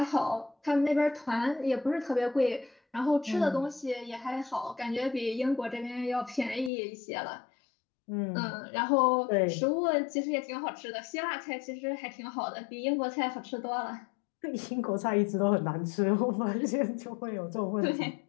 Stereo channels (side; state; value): right; drops out; at 6.7 s